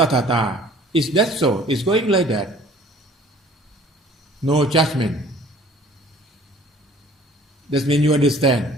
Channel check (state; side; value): normal; both; correlation 0.52